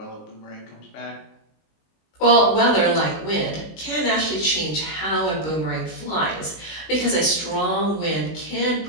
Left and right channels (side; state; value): right; late; 19 ms